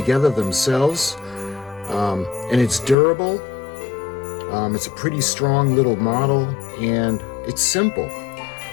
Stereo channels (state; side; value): drops out; right; at 3.0 s